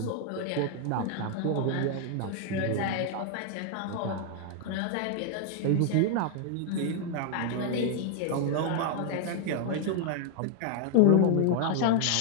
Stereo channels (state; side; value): different; both; correlation 0.00